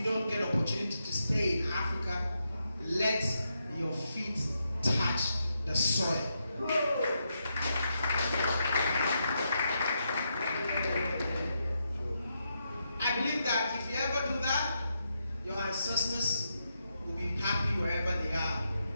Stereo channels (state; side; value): inverted; both; correlation -0.83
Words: don't get opportunity to stay in Africa, let your feet touch the soil. I believe that if you ever do that, your ancestors will be happy wherever they are,